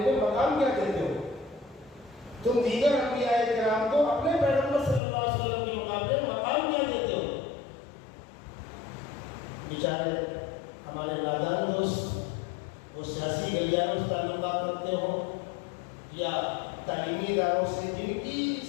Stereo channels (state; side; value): drops out; right; at 5.0 s